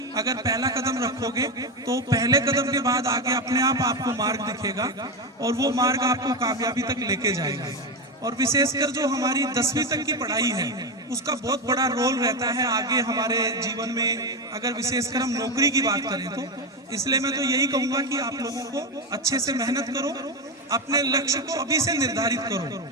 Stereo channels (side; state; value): both; normal; correlation 0.13